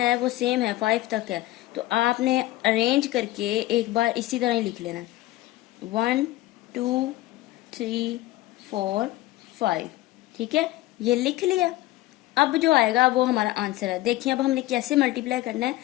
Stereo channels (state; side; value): quieter; right; 17.0 dB